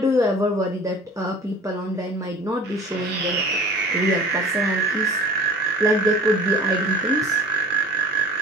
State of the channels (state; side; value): normal; both; correlation 0.43